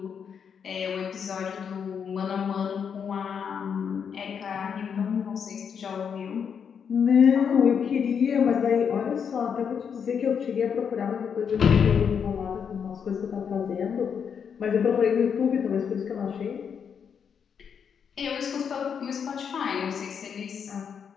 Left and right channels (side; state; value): right; quieter; 7.1 dB